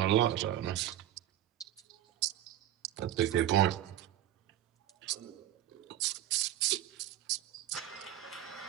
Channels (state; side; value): quieter; left; 12.3 dB